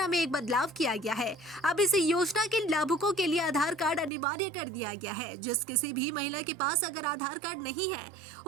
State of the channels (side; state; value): left; drops out; at 4.1 s